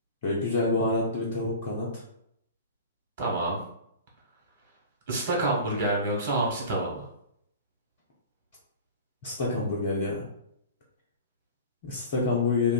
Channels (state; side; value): inverted; both; correlation -0.35